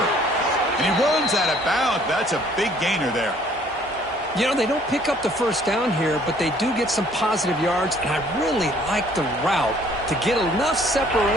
And he runs out of bounds. That's a big gainer there. You know, they don't pick up the first down here, but they do get some positive yards, and I really like the route to get enough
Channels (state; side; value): normal; both; correlation 0.59